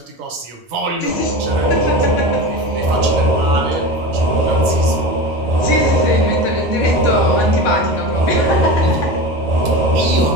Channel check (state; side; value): normal; both; correlation 0.28